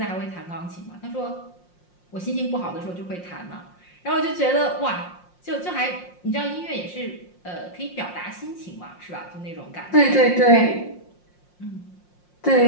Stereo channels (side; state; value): right; late; 5.6 ms